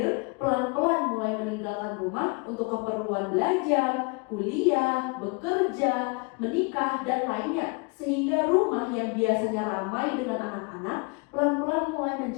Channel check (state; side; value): quieter; right; 30.9 dB